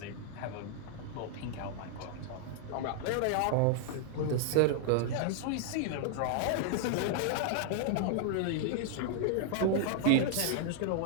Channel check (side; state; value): both; different; correlation -0.01